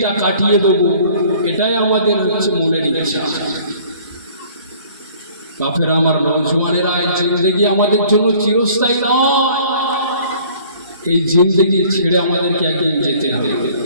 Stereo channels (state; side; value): inverted; both; correlation -0.54